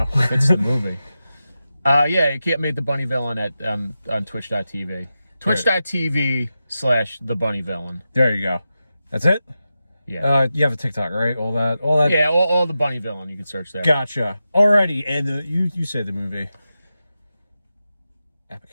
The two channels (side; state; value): both; inverted; correlation -0.91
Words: It's the movie. Yeah, you can't make the bunnyvillain at on twitch.tv. Twitch.tv/thebunnyvillain. There you go. That's it? Yeah. You have a TikTok, right? All that. Yeah, all the bunnyvillain. You can search that. Gotcha. Alrighty, and you said the movie.